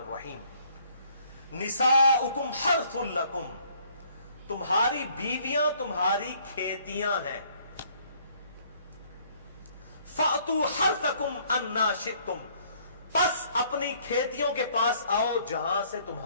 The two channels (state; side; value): inverted; both; correlation -0.62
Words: نساؤکم حرث لکم، تمہاری بیویاں تمہاری کھیتیاں ہیں۔ فأتوا حرثکم انا شئتم، پس اپنی کھیتیوں کے پاس آؤ جہاں سے